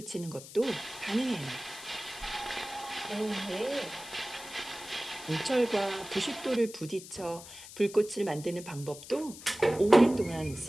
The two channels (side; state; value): left; noise; hiss, 15 dB below the sound